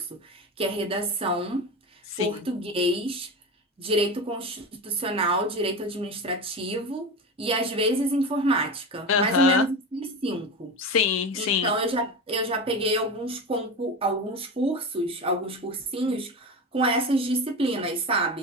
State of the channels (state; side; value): normal; both; correlation 0.24